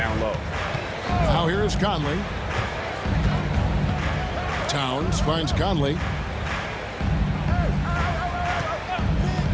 low. Now here is Conley. Towns finds Conley.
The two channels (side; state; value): both; identical; correlation 1.00